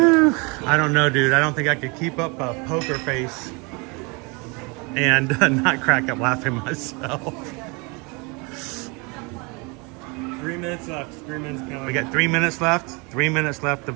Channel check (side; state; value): left; quieter; 29.4 dB